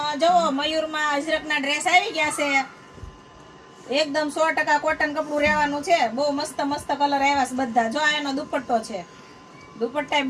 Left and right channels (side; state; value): both; identical; correlation 1.00